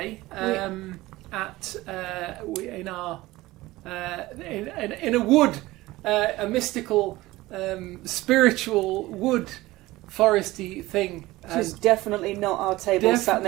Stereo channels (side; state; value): left; quieter; 18.6 dB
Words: in a wood, a mystical, spiritual wood, foresty thing. Which is definitely not our table sat